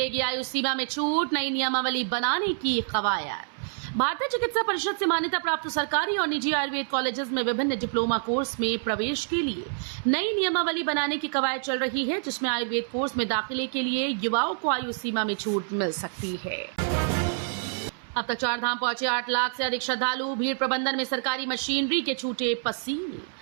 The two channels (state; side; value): silent; left; 60 dB below the other